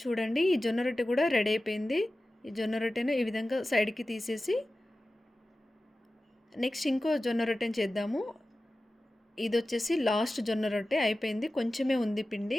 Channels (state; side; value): normal; both; correlation 0.95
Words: ఈ జొన్న రొట్టె కూడా రెడీ అయిపోయింది. ఈ జొన్న రొట్టెను ఈ విధంగా సైడ్కి తీసేసి నెక్స్ట్ ఇంకో జొన్న రొట్టెని చేద్దాము. ఇది వచ్చేసి లాస్ట్ జొన్న రొట్టె అయిపోయింది. కొంచెమే ఉంది